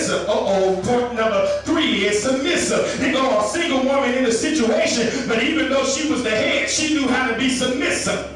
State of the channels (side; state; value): both; identical; correlation 1.00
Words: Point number 3 is submissive. They go a single woman in a situation, but even though she was the head, she knew how to be submissive.